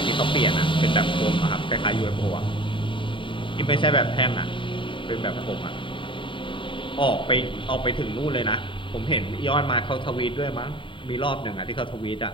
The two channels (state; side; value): late; right; 0.24 ms